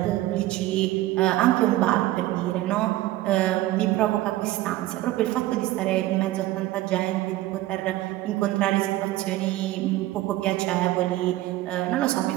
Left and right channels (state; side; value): quieter; left; 16.4 dB